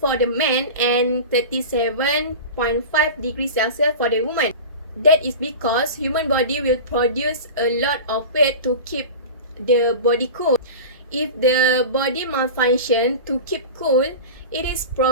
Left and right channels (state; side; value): inverted; both; correlation -0.30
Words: the man and 37.5 degrees Celsius for the woman. That is because human body will produce a lot of weight to keep the body cool. If the body malfunction to keep cool, it is